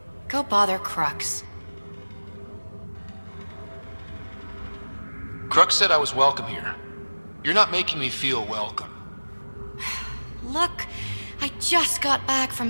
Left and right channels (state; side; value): inverted; both; correlation -1.00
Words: Go bother Crux. Crux said I was welcome here. You're not making me feel welcome. Look, I just got back from